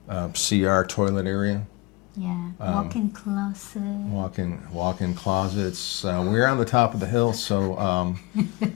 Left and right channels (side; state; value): right; quieter; 23.5 dB